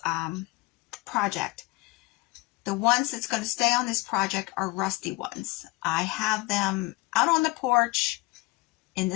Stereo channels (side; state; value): right; quieter; 22.6 dB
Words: project. The ones that's going to stay on this project are rusty ones. I have them out on the porch in